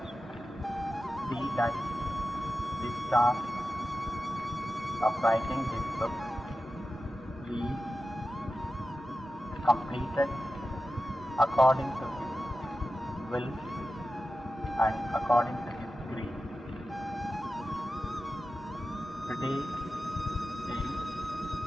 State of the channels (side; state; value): both; normal; correlation 0.93